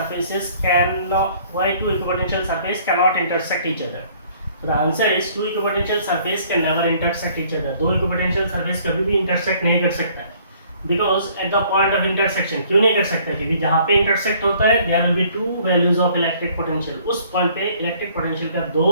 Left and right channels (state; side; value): inverted; both; correlation -0.58